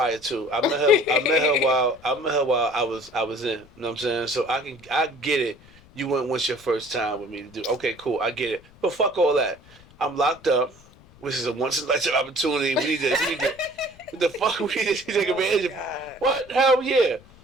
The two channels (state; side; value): noise; left; rumble, 25 dB below the sound